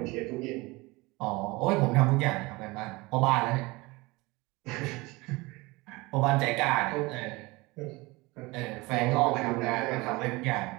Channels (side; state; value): left; quieter; 23.1 dB